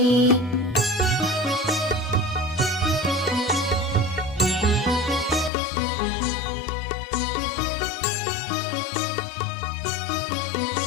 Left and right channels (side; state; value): right; drops out; at 5.5 s